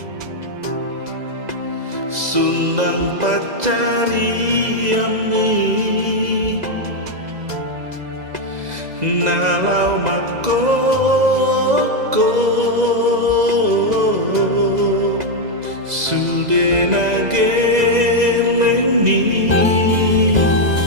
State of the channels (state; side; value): late; left; 2.0 ms